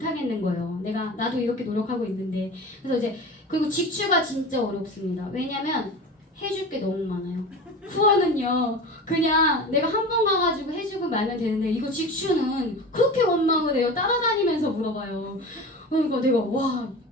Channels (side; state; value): both; normal; correlation 0.32